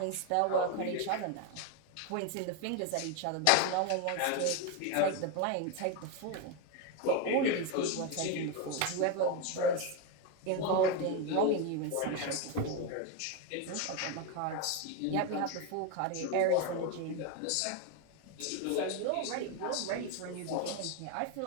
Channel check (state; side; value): different; both; correlation 0.02